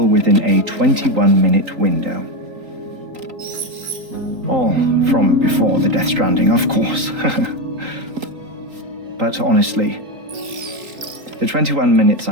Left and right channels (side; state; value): left; late; 3.8 ms